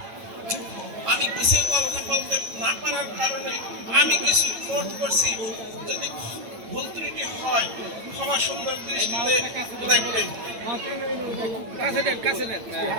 আমি কিছু কথা বলতে না পারার কারণে আমি কিছু নোট করছি, যদি ভুল ত্রুটি হয় ক্ষমা সুন্দর দৃষ্টিতে দেখবেন।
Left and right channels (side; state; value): left; late; 9.0 ms